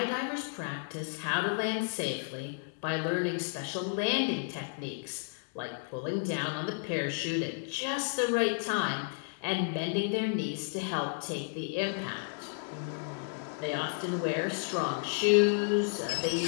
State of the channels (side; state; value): right; silent; digital silence